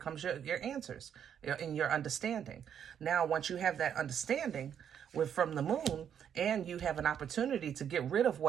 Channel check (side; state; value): left; quieter; 8.7 dB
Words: your answers and your understanding. Now, once you have that understanding from the Moon, and you have an opportunity to get rid of